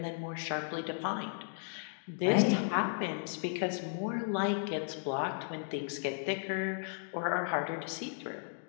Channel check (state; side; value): silent; right; digital silence